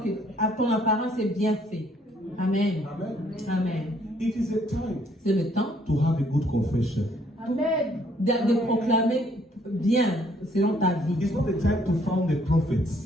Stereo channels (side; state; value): both; normal; correlation 0.65